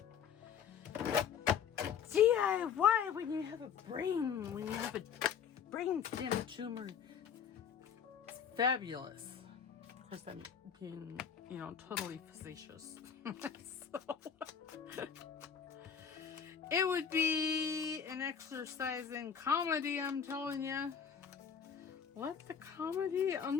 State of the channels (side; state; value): right; quieter; 7.4 dB